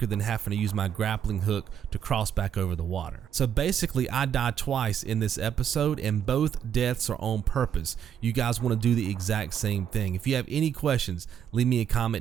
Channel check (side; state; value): left; quieter; 8.9 dB